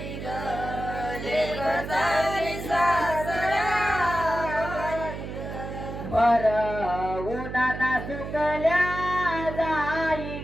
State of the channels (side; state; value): right; noise; hum, 8 dB below the sound